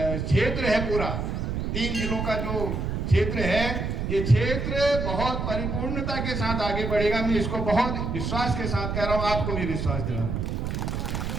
है, पूरा 3 जिलों का जो क्षेत्र है, ये क्षेत्र बहुत परिपूर्णता के साथ आगे बढ़ेगा। मैं इसको बहुत विश्वास के साथ कह रहा हूँ, आपको भी विश्वास दिला रहा हूँ।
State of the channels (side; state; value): right; noise; rumble, 2 dB below the sound